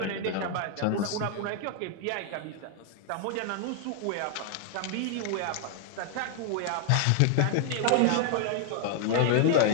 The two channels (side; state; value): both; different; correlation 0.00